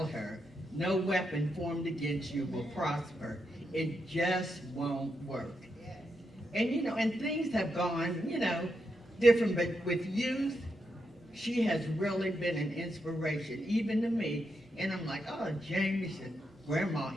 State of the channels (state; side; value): normal; both; correlation 0.83